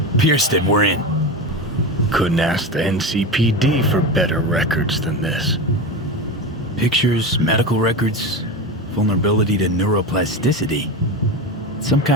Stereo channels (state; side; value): normal; both; correlation 0.23